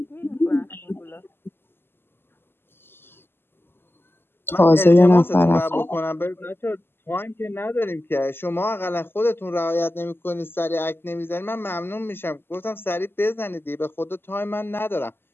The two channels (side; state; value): right; late; 0.11 ms